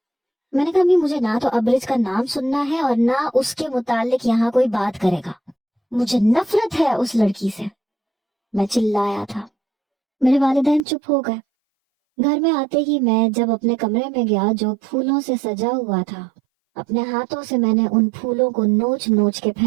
میں نے کہا امی مجھے نہ تو ابرج کا نام سننا ہے اور نہ اس کے متعلق یہاں کوئی بات کرے گا، مجھے نفرت ہے اس لڑکی سے۔ میں چلایا تھا۔ میرے والدین چپ ہو گئے۔ گھر میں آتے ہی میں جب اپنے کمرے میں گیا جو پھولوں سے سجا ہوا تھا، اپنے ہاتھوں سے میں نے ان پھولوں کو نوچ نوچ کے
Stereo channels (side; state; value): left; drops out; at 10.8 s